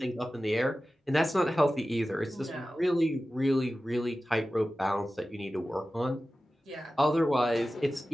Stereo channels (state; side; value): normal; both; correlation 0.95